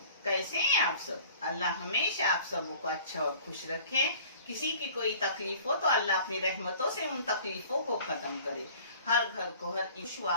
कैसे हैं आप सब? अल्लाह हमेशा आप सबको को अच्छा और खुश रखे। किसी की कोई तकलीफ हो तो अल्लाह अपनी रहमतों से उन तकलीफों को खत्म करे। हर घर को हर ईशु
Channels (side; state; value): both; inverted; correlation -0.49